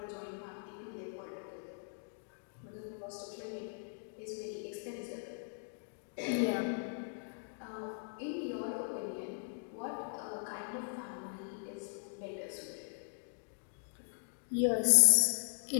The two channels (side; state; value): right; silent; digital silence